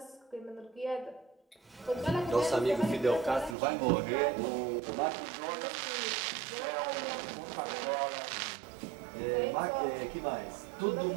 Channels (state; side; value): drops out; left; at 3.6 s